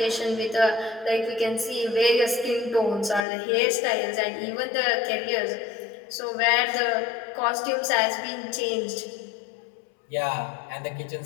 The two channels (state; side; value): drops out; right; at 3.2 s